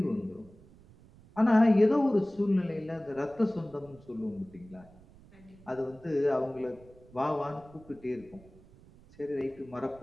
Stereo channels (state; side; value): noise; right; rumble, 24 dB below the sound